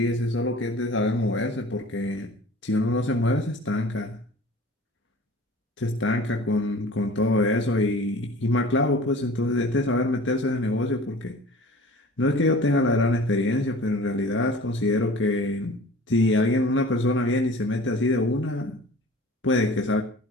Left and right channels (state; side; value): normal; both; correlation 0.43